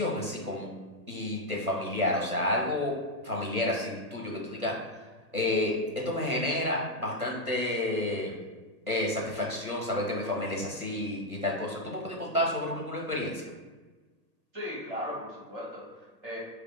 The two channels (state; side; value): late; left; 1.8 ms